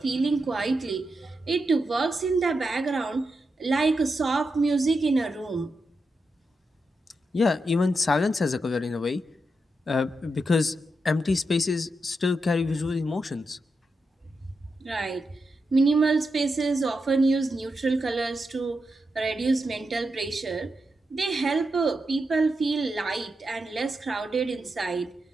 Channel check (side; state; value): both; normal; correlation 0.86